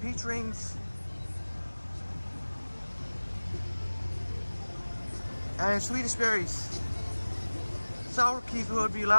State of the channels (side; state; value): both; inverted; correlation -1.00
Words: rings. And Swedish berries. Sour keys would be